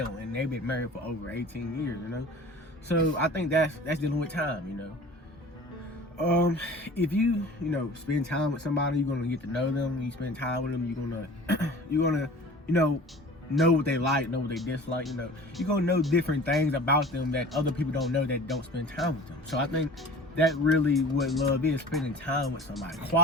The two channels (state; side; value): normal; both; correlation 0.42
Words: and they've been married for over 18 years, you know. So I think that's dealing with time, you know. If you spend time with somebody, you're gonna get to know them. When you spend time with them, you're gonna know what they like, know what they dislike. You know, you're gonna know different things about them that other people don't know that don't spend time with them. So I think that really what love is, spending time with somebody,